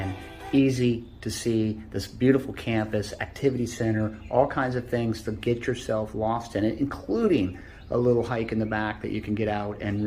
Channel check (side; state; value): both; identical; correlation 1.00